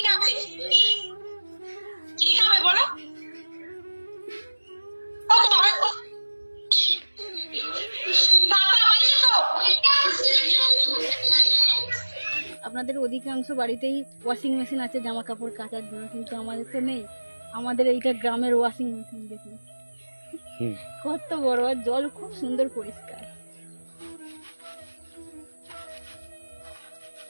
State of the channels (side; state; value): both; inverted; correlation -1.00